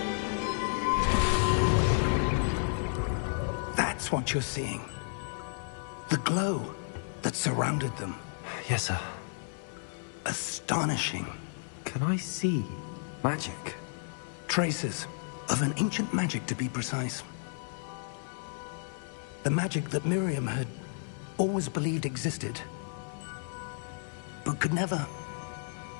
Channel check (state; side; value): silent; right; 56 dB below the other